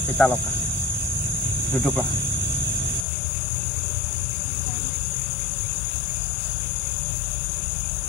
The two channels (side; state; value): right; drops out; at 3.1 s